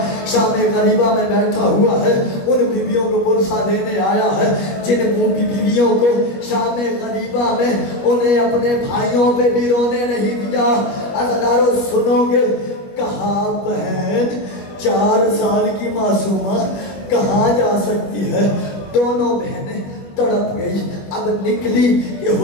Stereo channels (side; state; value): right; late; 21 ms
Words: شام غریبہ میں بیٹھا ہوا ہے، ان بیویوں کو پرسہ دینے آیا ہے جن بیویوں کو شام غریبہ میں انہیں اپنے بھائیوں پہ بھی رونے نہیں دیا۔ عزادارو سنو گے، کہاں بہن 4 سال کی معصومہ کہاں جا سکتی ہے؟ دونوں بہنیں تڑپ گئی، اب نکلی کہ